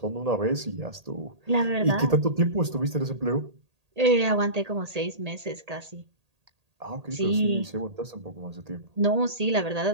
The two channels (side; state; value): left; late; 1.8 ms